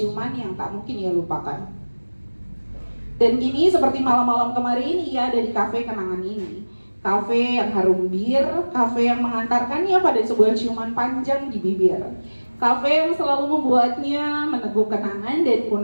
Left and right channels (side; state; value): both; inverted; correlation -1.00